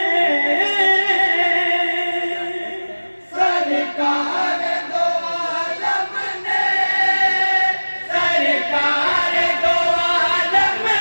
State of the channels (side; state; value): both; inverted; correlation -1.00